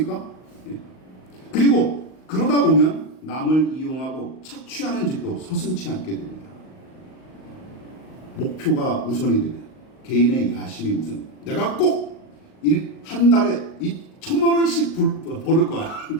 그리고 그러다 보면 남을 이용하고 착취하는 짓도 서슴지 않게 됩니다. 목표가 우선이 되면 개인의 야심이 우선. 내가 꼭 한 달에 1,000만 원씩 벌을 거야.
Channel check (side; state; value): right; late; 38 ms